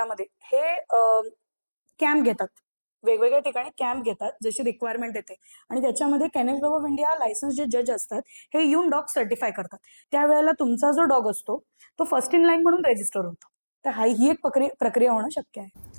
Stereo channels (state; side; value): inverted; both; correlation -1.00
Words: हे कॅम्प घेतात, वेगवेगळ्या ठिकाणी कॅम्प घेतात जशी रिक्वायरमेंट येते. आणि त्याच्यामध्ये kennel club of India licence जे जज असतात हे येऊन डॉग सर्टिफाय करतात. त्यावेळेला तुमचा जो डॉग असतो तो फर्स्ट इन लाईन म्हणून रजिस्टर होतो. तर ही एक प्रक्रिया होणं शक्य